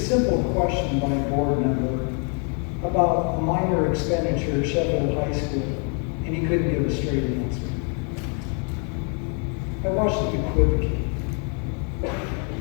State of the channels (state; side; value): quieter; right; 38.9 dB